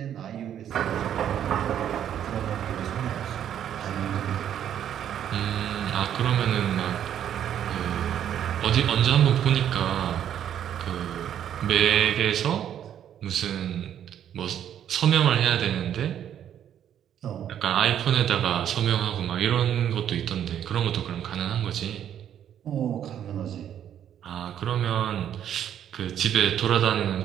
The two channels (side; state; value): left; quieter; 10.0 dB